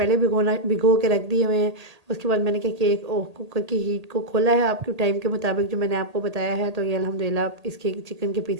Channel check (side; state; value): left; late; 1.8 ms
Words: भिगो के रख दिए हुए हैं। उसके बाद मैंने क्या किया, एक कुकर की हीट को खोला है आपके टाइम के मुताबिक जो मैंने आपको बताया है। तो ये अल्हम्दुलिल्लाह इसके चिकन के